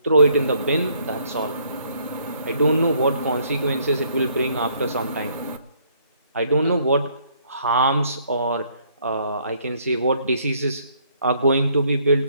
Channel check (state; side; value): inverted; both; correlation -0.66